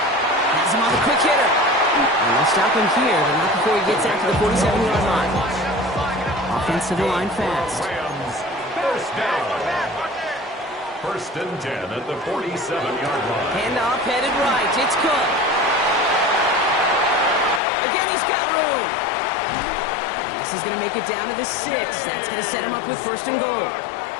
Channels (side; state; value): right; drops out; at 17.6 s